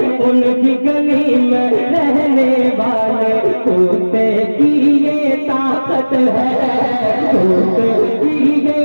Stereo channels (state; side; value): inverted; both; correlation -1.00